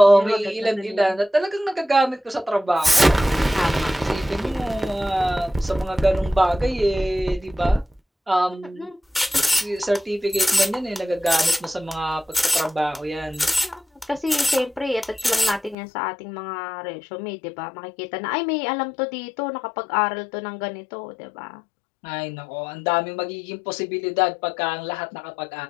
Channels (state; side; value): drops out; right; at 15.8 s